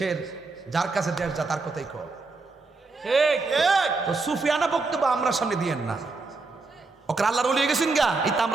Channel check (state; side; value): quieter; left; 3.8 dB